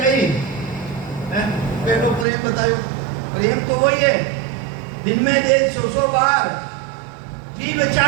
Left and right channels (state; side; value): drops out; left; at 2.2 s